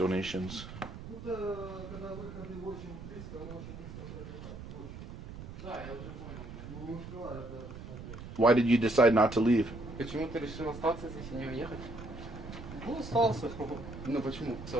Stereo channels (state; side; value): noise; right; rumble, 11 dB below the sound